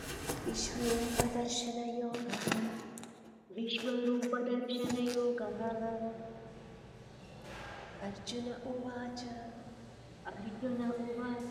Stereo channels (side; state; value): both; identical; correlation 1.00